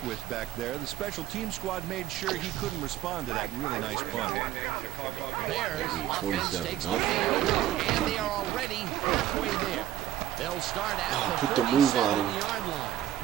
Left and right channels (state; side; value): quieter; left; 12.3 dB